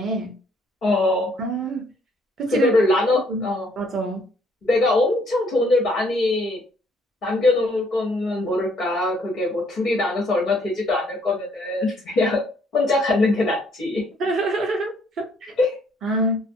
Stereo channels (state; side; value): normal; both; correlation 0.65